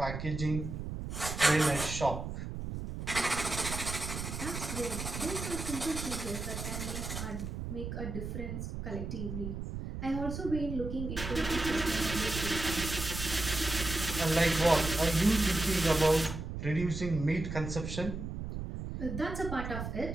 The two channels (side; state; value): right; noise; rumble, 6 dB below the sound